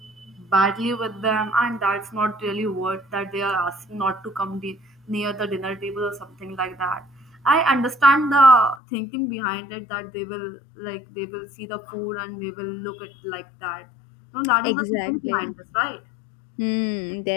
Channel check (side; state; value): right; drops out; at 8.8 s